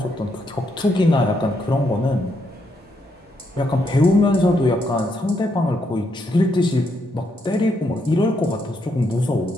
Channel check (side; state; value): both; normal; correlation 0.77